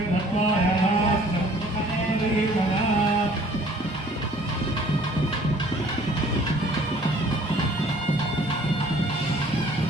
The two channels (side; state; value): both; normal; correlation 0.54